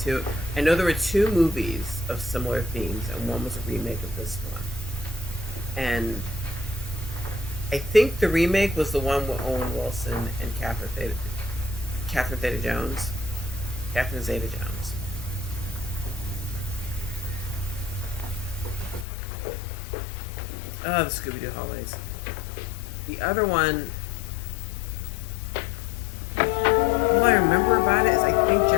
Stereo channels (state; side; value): drops out; right; at 19.1 s